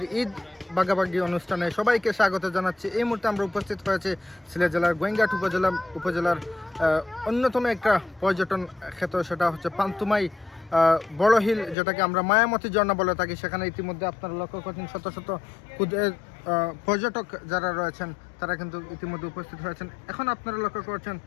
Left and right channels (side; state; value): right; drops out; at 11.8 s